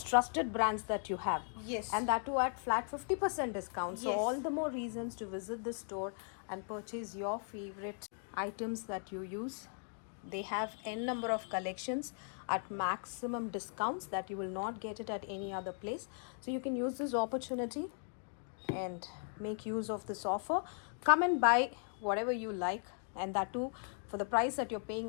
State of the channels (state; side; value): silent; right; 53 dB below the other